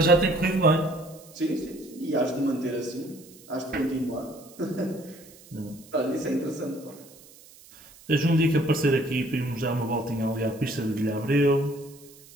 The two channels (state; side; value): noise; right; hiss, 23 dB below the sound